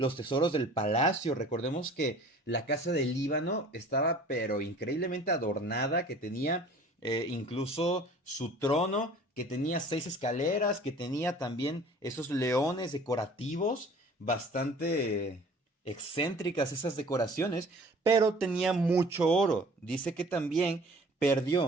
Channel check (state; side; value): normal; both; correlation 0.48